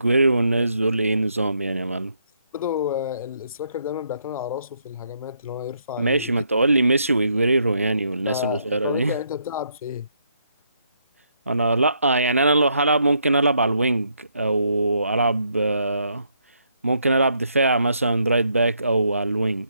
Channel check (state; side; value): inverted; both; correlation -0.74